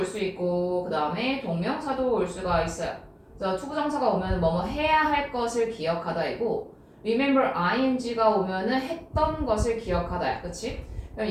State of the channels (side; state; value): both; identical; correlation 1.00